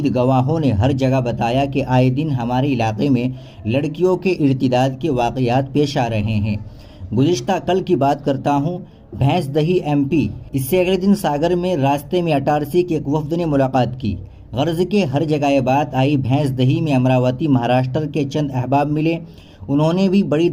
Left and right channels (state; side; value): identical; both; correlation 1.00